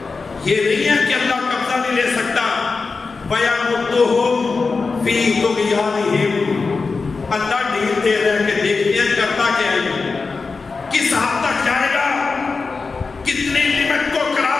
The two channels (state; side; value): quieter; right; 4.4 dB